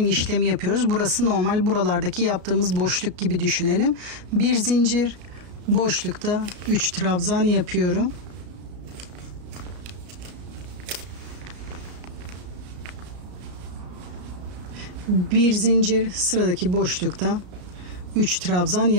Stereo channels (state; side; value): late; left; 34 ms